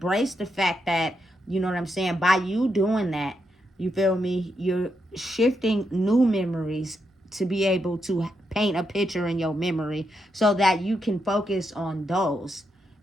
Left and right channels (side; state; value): both; normal; correlation 0.82